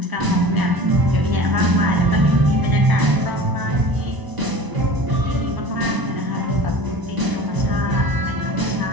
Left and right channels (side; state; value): left; late; 1.0 ms